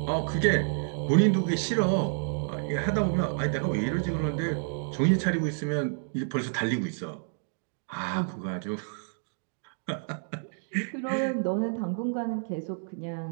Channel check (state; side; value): silent; left; digital silence